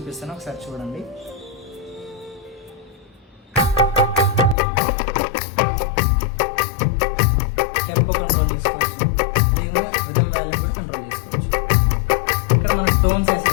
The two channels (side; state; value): right; drops out; at 4.5 s